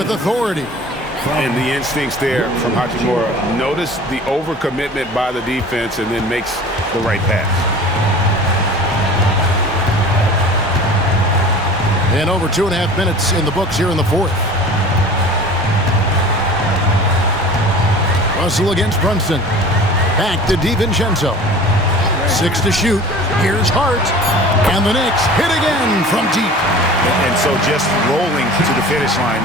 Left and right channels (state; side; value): normal; both; correlation 0.41